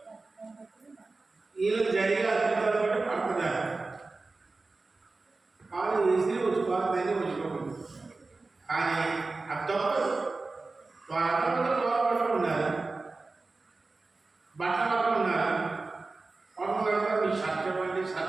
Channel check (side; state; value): left; quieter; 3.6 dB